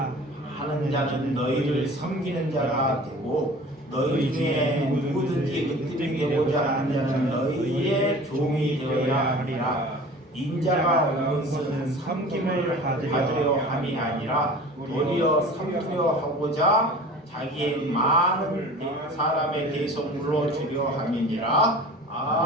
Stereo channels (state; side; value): normal; both; correlation 0.41